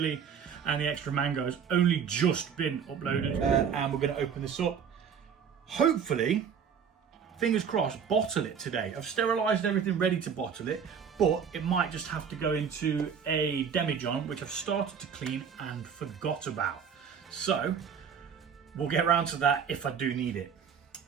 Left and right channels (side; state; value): left; quieter; 7.2 dB